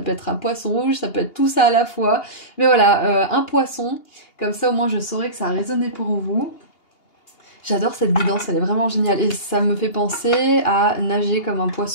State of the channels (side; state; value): right; late; 2.8 ms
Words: être un poisson rouge, ça peut être tout ça à la fois. Mais voilà, un poisson, comme ça au moins je saurai que ça a résonné pour vous. J'adore cette guidance, elle est vraiment géniale. Et ça me fait penser à nager comme un